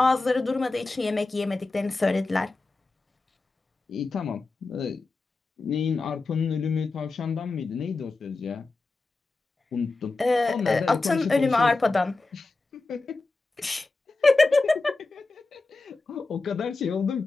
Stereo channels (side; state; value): right; quieter; 3.5 dB